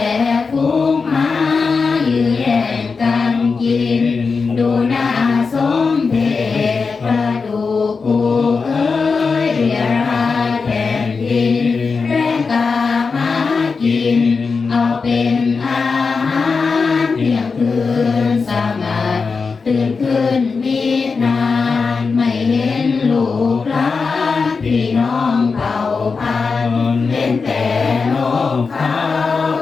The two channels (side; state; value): right; quieter; 4.8 dB